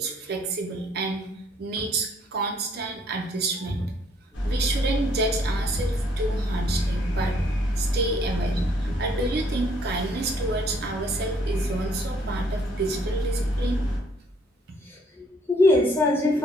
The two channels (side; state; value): both; normal; correlation 0.64